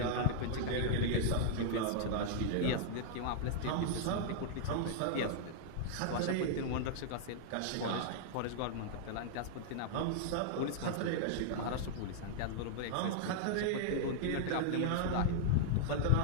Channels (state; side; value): different; both; correlation -0.01